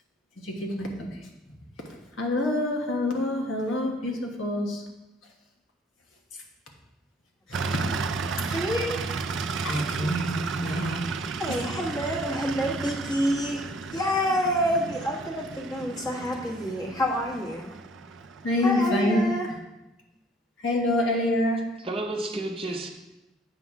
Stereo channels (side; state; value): both; normal; correlation 0.57